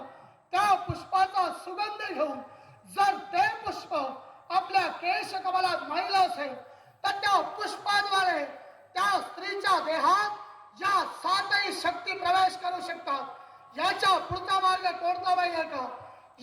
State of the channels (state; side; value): identical; both; correlation 1.00